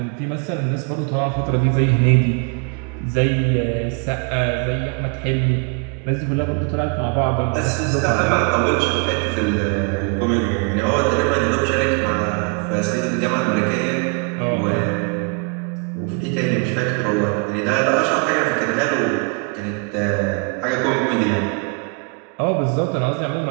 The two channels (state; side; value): quieter; left; 34.9 dB